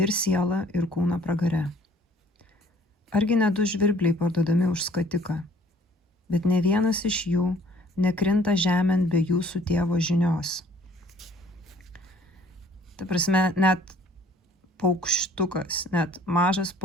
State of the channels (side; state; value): both; normal; correlation 0.56